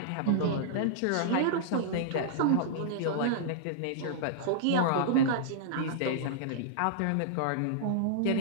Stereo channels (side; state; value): both; different; correlation -0.02